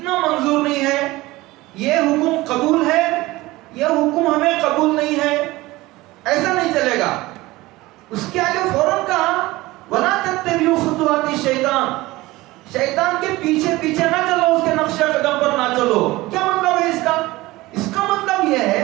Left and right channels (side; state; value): left; quieter; 19.5 dB